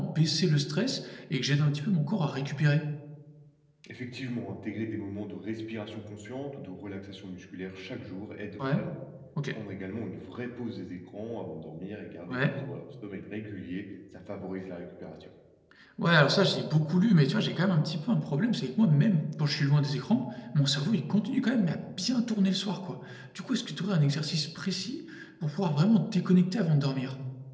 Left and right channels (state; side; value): identical; both; correlation 1.00